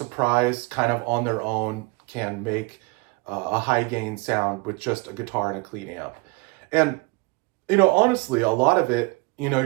kind of on their own can make a high gain sound with just a guitar and a clean amp. And, honestly, a lot of it, you know,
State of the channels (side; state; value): left; quieter; 26.6 dB